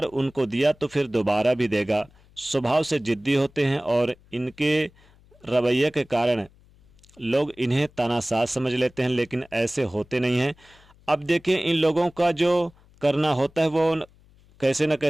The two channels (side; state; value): left; noise; hum, 29 dB below the sound